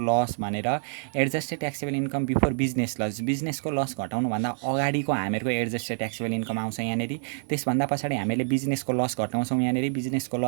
loss भनेर adjusted taxable income before business loss, बिजनेसको लस घटाउनुभन्दा अगाडिको हामीहरूको एडजस्टेड ट्याक्सेबल इन्कम आउँछ यहाँनिर। त्यसभन्दा पछाडि हामीले बिजनेसको लस घटाउँछौँ यहाँनिर। बिजनेसको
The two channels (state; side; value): silent; left; digital silence